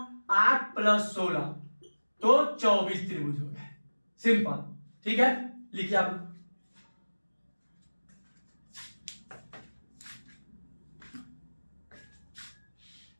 8 + 16 तो 24 त्रिभुज हो गए। सिंपल, ठीक है, लिखिए आप।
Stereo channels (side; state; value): both; inverted; correlation -1.00